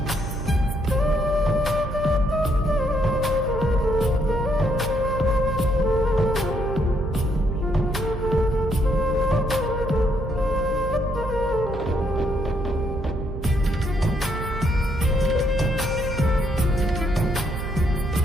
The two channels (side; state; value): right; noise; hum, 9 dB below the sound